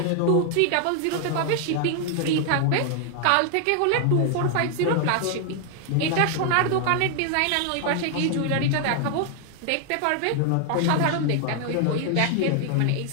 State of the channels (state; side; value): different; both; correlation 0.00